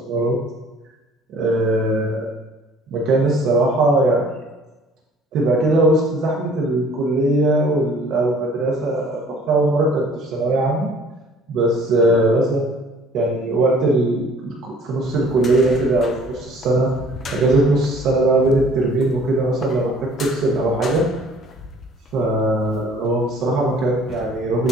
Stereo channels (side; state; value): both; normal; correlation 0.54